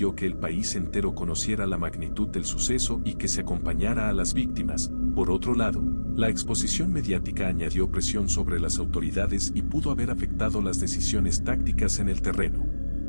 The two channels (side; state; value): both; inverted; correlation -1.00